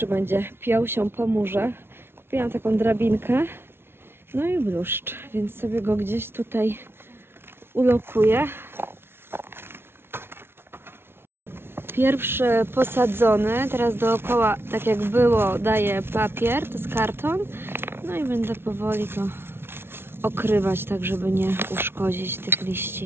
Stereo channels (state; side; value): late; left; 0.12 ms